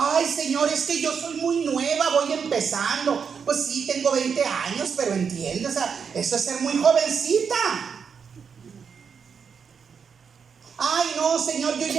Señor, es que yo soy muy nueva, voy empezando. Pues sí, tengo 20 años, pero entiende, o sea, eso es ser muy jovencita. Ay, no, Señor, yo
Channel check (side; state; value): left; quieter; 6.4 dB